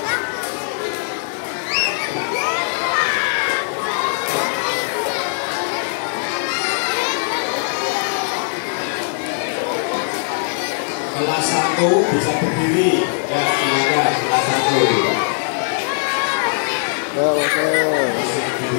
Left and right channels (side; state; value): right; silent; digital silence